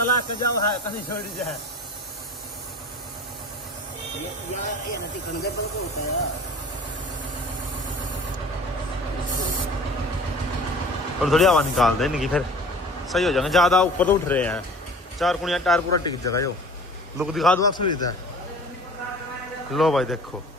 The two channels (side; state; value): both; normal; correlation 0.44